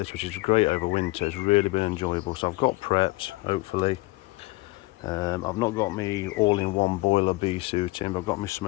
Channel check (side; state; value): right; quieter; 21.8 dB